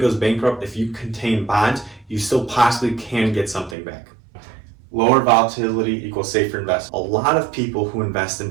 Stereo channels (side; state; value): left; drops out; at 3.8 s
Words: bankrupt, if you contain bonds, you still possibly can get something back. Lower volatility equals safer investment. A lot of people who invest